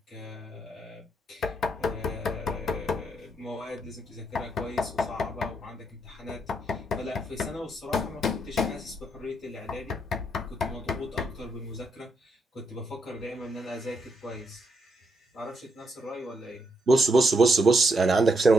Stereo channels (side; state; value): both; normal; correlation 0.78